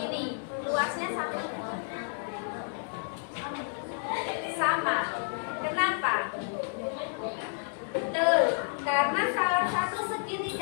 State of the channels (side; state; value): right; silent; 57 dB below the other